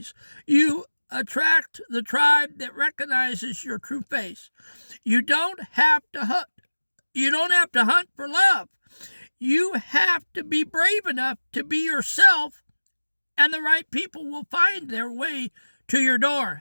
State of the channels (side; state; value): both; inverted; correlation -1.00